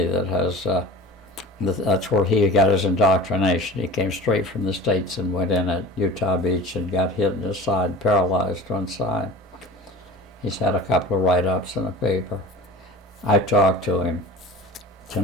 that has, that's where he got his indoctrination. He came straight from the States and went in at Utah Beach and got hit in his side, paralyzed one side. He's had a couple of write-ups in the paper. I talked to him to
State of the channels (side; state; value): both; normal; correlation 0.37